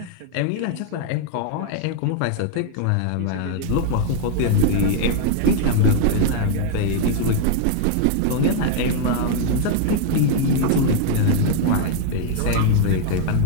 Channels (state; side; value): different; both; correlation 0.00